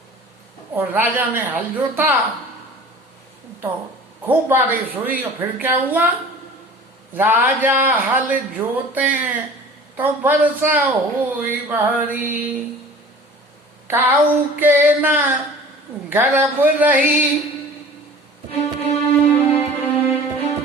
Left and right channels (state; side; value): normal; both; correlation 0.43